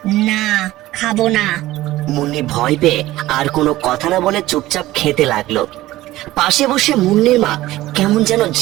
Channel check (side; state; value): left; quieter; 16.5 dB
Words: না, খাবো না। মুন্নি ভয় পেয়ে আর কোনো কথা না বলে চুপচাপ খেতে লাগলো। পাশে বসে মুন্নির মা কেমন যেন